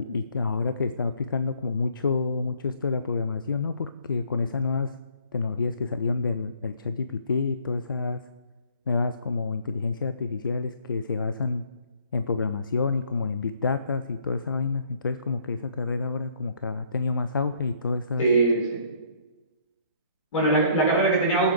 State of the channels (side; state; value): both; inverted; correlation -0.61